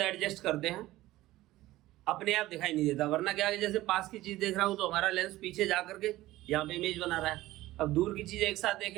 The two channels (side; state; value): left; quieter; 16.7 dB